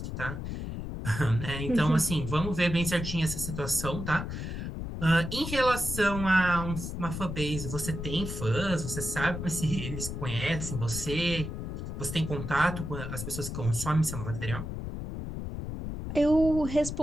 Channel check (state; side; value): noise; left; rumble, 6 dB below the sound